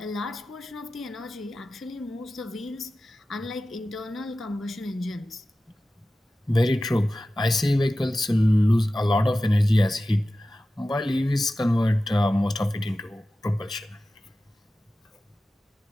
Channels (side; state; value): both; normal; correlation 0.95